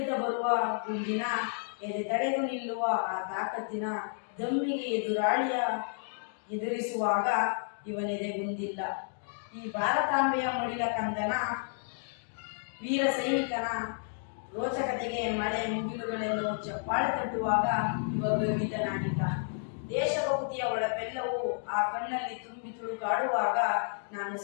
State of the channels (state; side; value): silent; right; digital silence